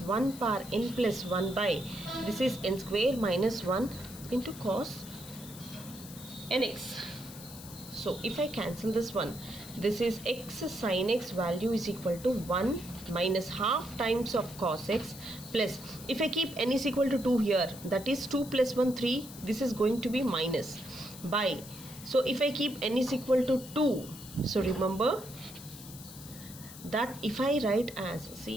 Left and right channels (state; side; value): noise; left; hiss, 15 dB below the sound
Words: power n plus 1 by, this is n square minus 1 into cos nx. So if I cancel this one, this is x sin x value is equal to 1 minus half times of cos x plus, if I keep n is equal to 2 here, that is 2 plus 1 3, this is going to be minus by, so if I keep n is equal to 2, so remember that if I write as,